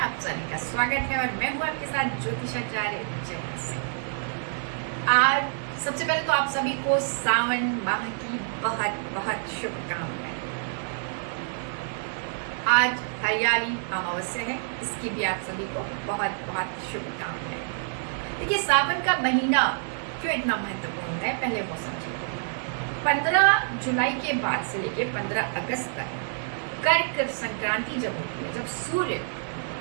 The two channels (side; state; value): left; silent; digital silence